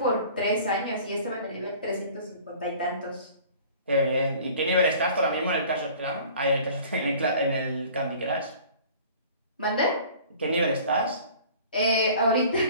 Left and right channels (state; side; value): inverted; both; correlation -0.47